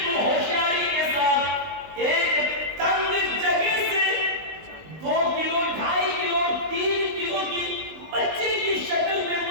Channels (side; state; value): left; late; 19 ms